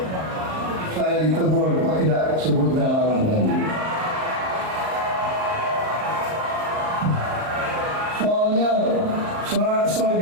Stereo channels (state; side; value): late; left; 38 ms